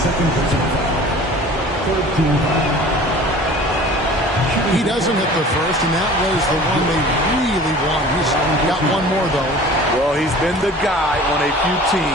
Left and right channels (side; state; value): both; normal; correlation 0.44